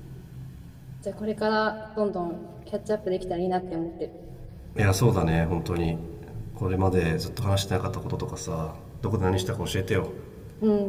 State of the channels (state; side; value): identical; both; correlation 1.00